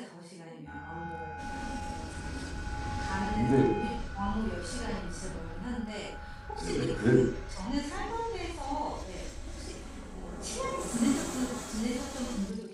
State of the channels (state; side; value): identical; both; correlation 1.00